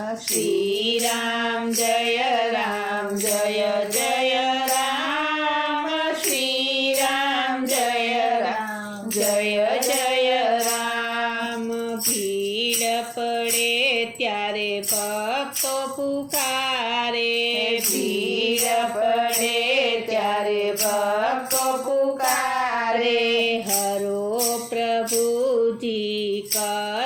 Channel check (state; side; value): identical; both; correlation 1.00